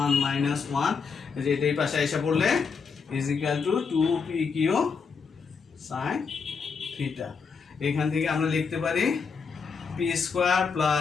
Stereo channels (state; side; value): quieter; right; 5.5 dB